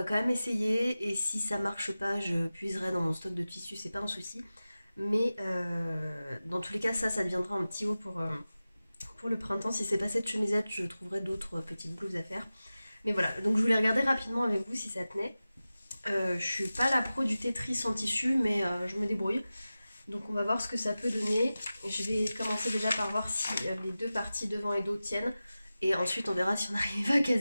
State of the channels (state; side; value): inverted; both; correlation -0.95